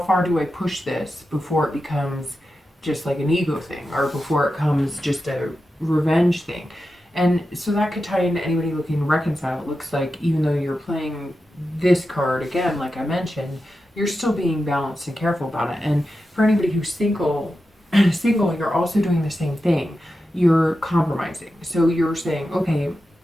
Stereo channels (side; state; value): both; normal; correlation 0.90